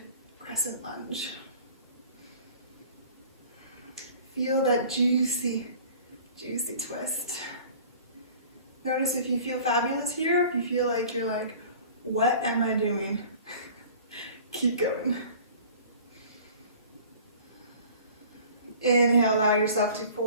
crescent lunge. Feel that juicy, juicy twist. Notice if you feel fabulous here, if you feel like you're like, what am I doing? Keep going. Inhale, allow yourself to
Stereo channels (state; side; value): inverted; both; correlation -0.46